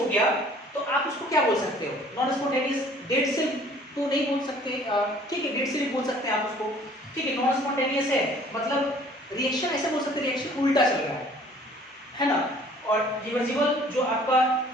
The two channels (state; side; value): normal; both; correlation 0.54